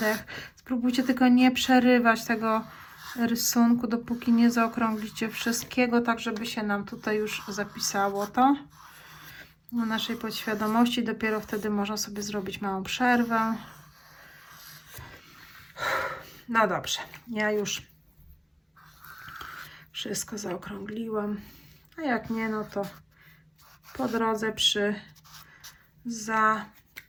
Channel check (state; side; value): identical; both; correlation 1.00